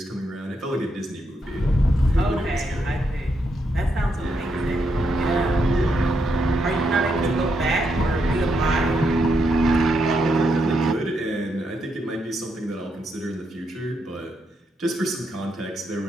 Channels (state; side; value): normal; both; correlation 0.80